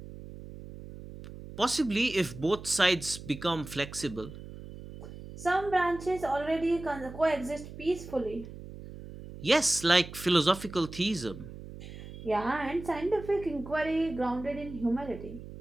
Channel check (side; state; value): right; noise; hum, 13 dB below the sound